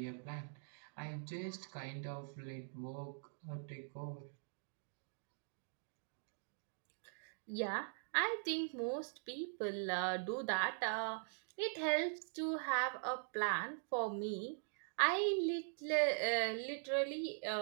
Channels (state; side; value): silent; left; digital silence